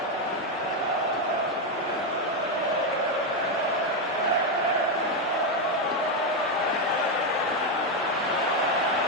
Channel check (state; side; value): normal; both; correlation 0.06